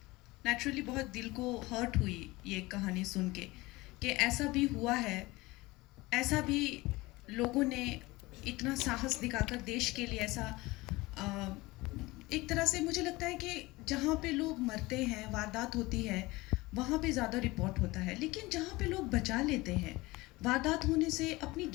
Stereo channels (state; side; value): quieter; right; 21.2 dB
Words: नेचुरली बहुत दिल को हर्ट हुई ये कहानी सुन के कि ऐसा भी हुआ है, ऐसा भी लोगों ने इतना साहस दिखाकर देश के लिए ऐसा अ, एक तरह से मुझे लगता है कि जहाँ पे लोग मरते हैं, वारदात होती है, वहाँ पे ज़्यादा रिपोर्ट होता है, लेकिन जहाँ पे लोग बचा लेते हैं वारदात होने से, अपनी